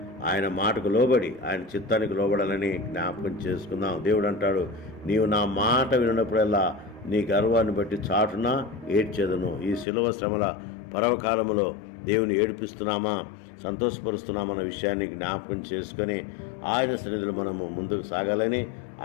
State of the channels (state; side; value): drops out; right; at 9.9 s